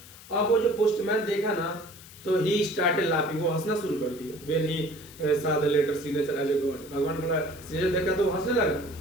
अब वो जो पोस्टमैन देखा ना तो ही स्टार्टेड लाफिंग, वो हंसना शुरू कर दिया। When he saw the letter signature as a god, भगवान बोला सिग्नेचर देखा तो हंसने लगा,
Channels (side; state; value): left; noise; hiss, 19 dB below the sound